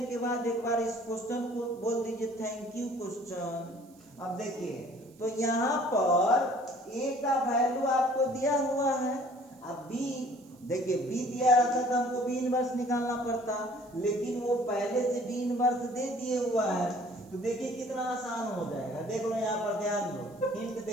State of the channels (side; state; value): right; noise; hiss, 29 dB below the sound